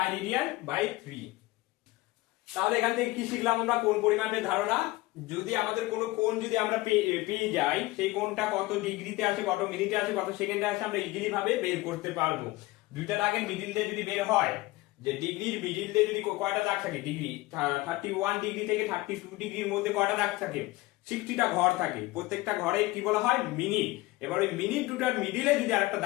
রেডিয়ান বাই 3। তাহলে এখান থেকে কি শিখলাম আমরা, কোণ পরিমাপের ধারণা। যদি আমাদের কোনো কোণ যদি আমরা পেয়ে যাই, সেই কোণটা কত ডিগ্রিতে আছে, কত মিনিটে আছে, কত সেকেন্ডে আছে, আমরা ইজিলি ভাবে বের করতে পারবো। দুইটা দাগের মিডিল দিয়ে যদি বের হয়, যে ডিগ্রির মিডিল দিয়ে যদি কয়টা দাগ থাকে, ডিগ্রি 31 ডিগ্রি থেকে 32 ডিগ্রির মধ্যে কয়টা দাগ থাকে, 60টা ঘর থাকে, প্রত্যেকটা ঘরে কি বলা হয়, মিনিট। এবার ওই মিনিট দুটার মিডিলে যদি আরেকটা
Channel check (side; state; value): right; quieter; 20.0 dB